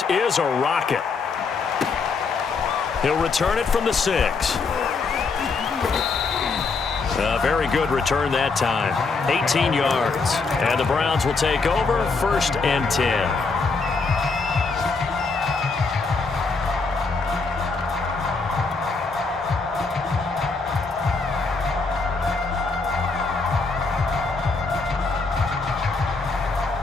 is a rocket. He'll return it from the 6. A very good return that time. 18 yards. And the Browns will take over 1st and 10.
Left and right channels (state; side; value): quieter; right; 4.3 dB